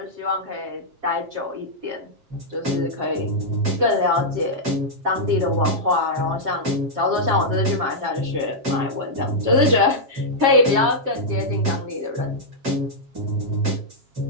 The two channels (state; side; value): late; left; 7.4 ms